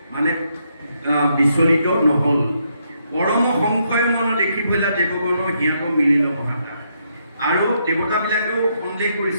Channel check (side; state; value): both; inverted; correlation -0.77